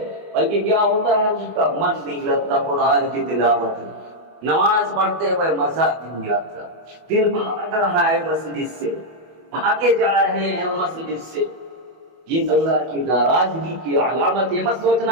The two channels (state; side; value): late; left; 24 ms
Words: بلکہ کیا ہوتا ہے اس کا من نہیں لگتا قرآن کی تلاوت میں، نماز پڑھتے ہوئے مزہ نہیں آتا، دل بھاگ رہا ہے مسجد سے، بھاگے جا رہے ہیں مسجد سے۔ یہ اللہ کی ناراضگی کی علامت ہے۔ مت